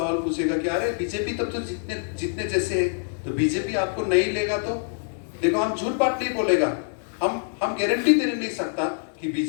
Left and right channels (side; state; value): right; silent; digital silence